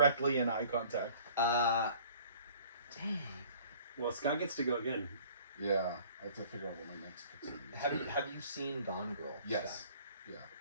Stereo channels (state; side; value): inverted; both; correlation -0.52